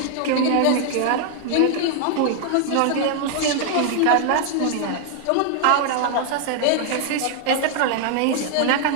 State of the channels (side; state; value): both; different; correlation 0.00